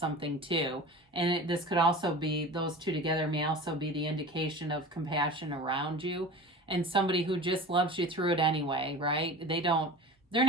too. And this could also be, those two together may also be the indication of compassion around you, and somebody who just loves you through it anyway, right? They're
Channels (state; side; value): normal; both; correlation 0.35